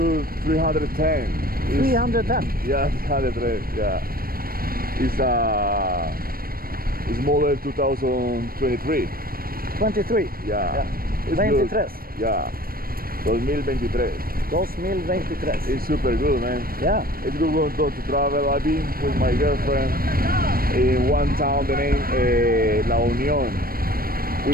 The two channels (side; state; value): left; late; 0.43 ms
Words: 310. 310. Yeah, 310. Yeah. It's model 2023. 23. Yeah. It's 23. good. Yeah. 2023. 2023. It's super good, man. Yeah. It's good to travel. I've been with my girlfriend in one town, the name La Unión. We